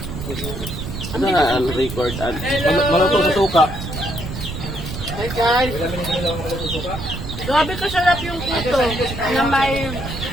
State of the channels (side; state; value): right; noise; rumble, 7 dB below the sound